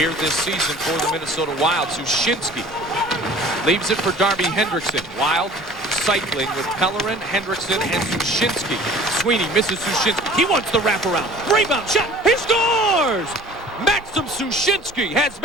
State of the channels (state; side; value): normal; both; correlation 0.46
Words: this season for the Minnesota Wild. Sushinsky leaves it for Darby Hendrickson. Wild cycling with Pellerin, Hendrickson, and Sushinsky. Sweeney misses Sushinsky. He wants the wraparound. Rebound shot. He scores! Maxim Sushinsky has